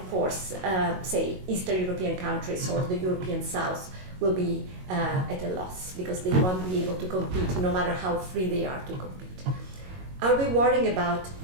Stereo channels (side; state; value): left; late; 22 ms